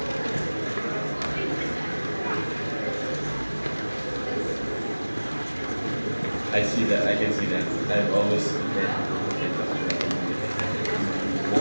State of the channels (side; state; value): both; inverted; correlation -1.00